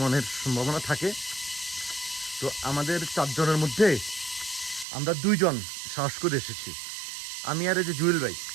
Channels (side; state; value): left; drops out; at 4.9 s